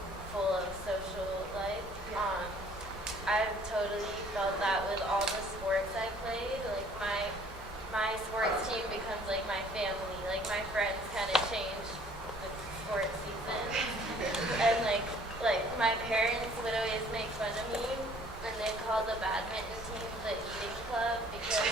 full of social life. I've totally felt that with all the sports I played. Like my sports team becomes like my family. Like my friends kind of change with sports season. And like my parents would always make fun of me, and they called the badminton team the eating club, because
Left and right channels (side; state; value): both; normal; correlation 0.56